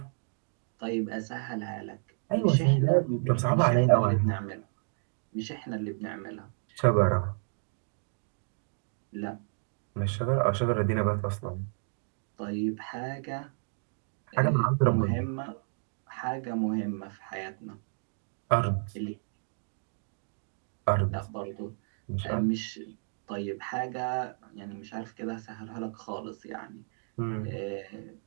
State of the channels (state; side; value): silent; left; 57 dB below the other